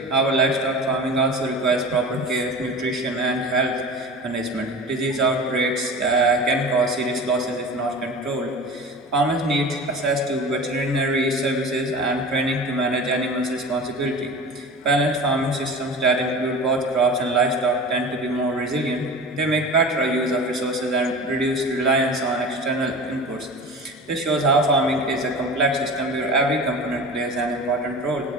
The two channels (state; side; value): normal; both; correlation 0.35